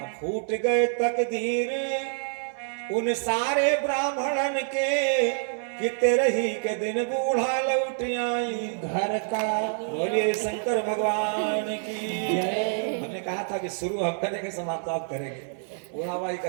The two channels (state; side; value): silent; left; 60 dB below the other